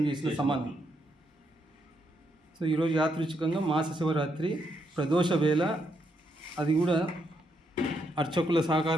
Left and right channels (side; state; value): both; normal; correlation 0.78